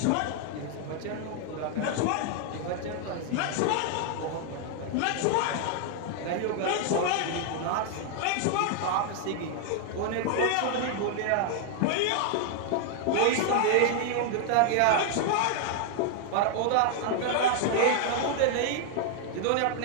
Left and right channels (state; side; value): different; both; correlation 0.00